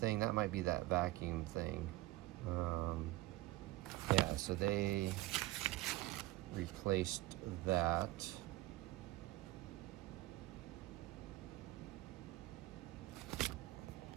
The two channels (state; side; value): quieter; left; 18.5 dB